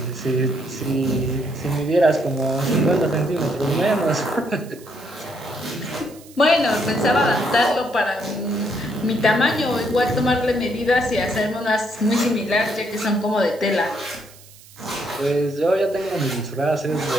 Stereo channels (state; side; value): noise; right; hiss, 22 dB below the sound